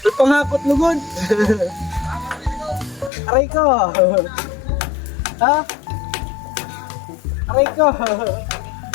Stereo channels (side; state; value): right; drops out; at 3.1 s